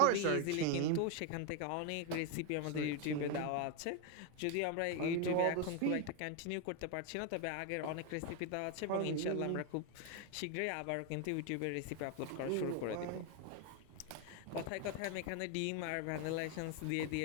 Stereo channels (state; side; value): different; both; correlation 0.01